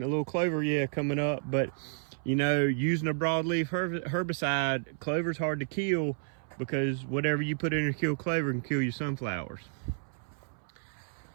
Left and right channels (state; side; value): silent; left; 57 dB below the other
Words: coming up, but you know, using a broadleaf herbicide, clover's hard to kill because whatever you put in to kill clover can kill your sunflowers.